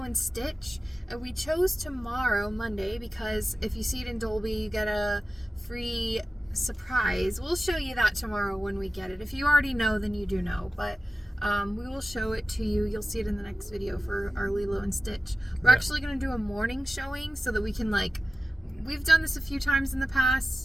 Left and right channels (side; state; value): both; normal; correlation 0.94